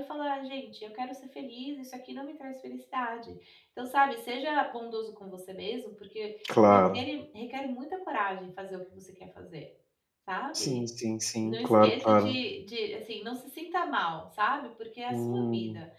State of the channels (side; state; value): both; identical; correlation 1.00